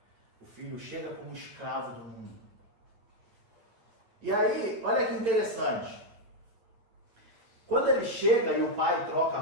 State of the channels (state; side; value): late; left; 8.9 ms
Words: O filho chega como escravo do mundo. E aí, olha que interessante. Quando ele chega e o pai troca a